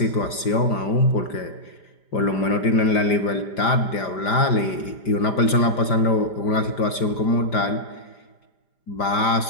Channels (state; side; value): late; right; 5.0 ms